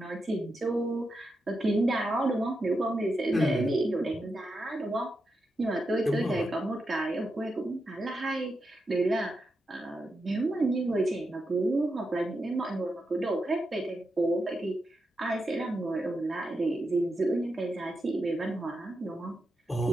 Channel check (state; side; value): normal; both; correlation 0.87